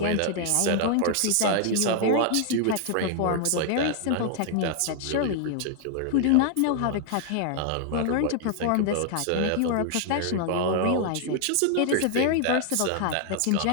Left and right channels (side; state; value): both; different; correlation 0.00